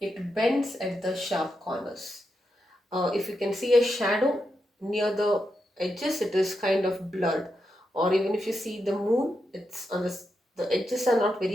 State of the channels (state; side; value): normal; both; correlation 0.85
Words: bends at the sharp corners. If you can see a shadow near the edges, it is kind of blurred, or even if you see the moon, it's on the edges are not